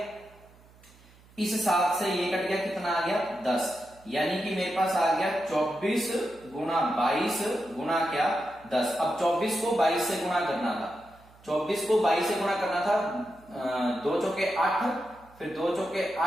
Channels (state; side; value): noise; right; hum, 26 dB below the sound